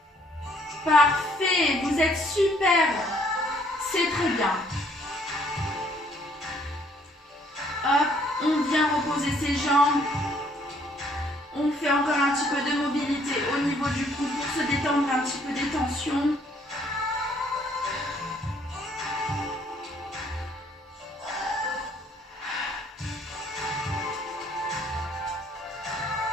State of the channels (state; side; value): normal; both; correlation 0.64